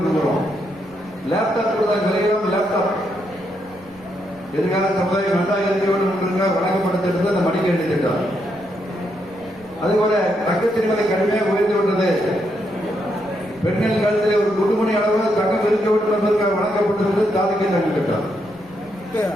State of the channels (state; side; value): noise; right; rumble, 26 dB below the sound